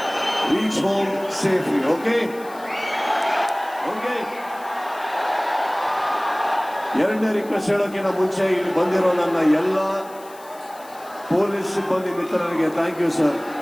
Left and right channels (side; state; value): left; noise; hiss, 22 dB below the sound